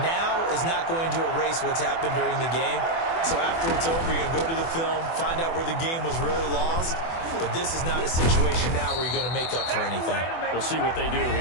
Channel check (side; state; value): right; late; 24 ms